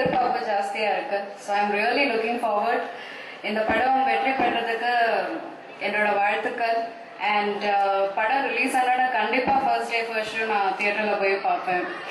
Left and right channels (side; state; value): both; identical; correlation 1.00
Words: ஜாஸ்தியா இருக்கு. So I am really looking forward. இந்த படம் வெற்றி பெறதுக்கு என்னோட வாழ்த்துக்கள். அண்ட் படம் ரிலீஸ் ஆனா கண்டிப்பா ஃபர்ஸ்ட் டே ஃபர்ஸ்ட் ஷோ நான் தியேட்டர்ல போய் பார்ப்பேன்.